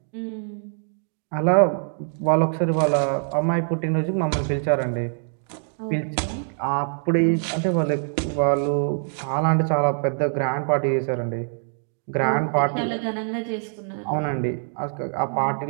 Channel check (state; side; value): silent; left; 63 dB below the other